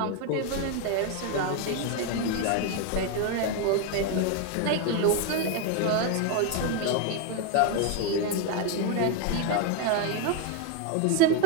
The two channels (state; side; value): different; both; correlation 0.01